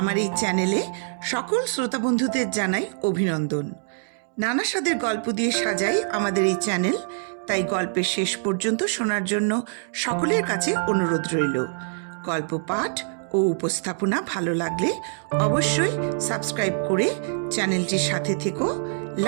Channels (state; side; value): silent; left; 62 dB below the other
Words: এই চ্যানেলে সকল শ্রোতা বন্ধুদের জানাই অভিনন্দন। নানা স্বাদের গল্প দিয়ে সাজাই আমাদের এই চ্যানেল, তাই গল্পের শেষ পর্যন্ত শোনার জন্য সকলের কাছে অনুরোধ রইল। গল্প পাঠ ও উপস্থাপনা ভালো লাগলে অবশ্যই সাবস্ক্রাইব করে চ্যানেলটির সাথে থেকো,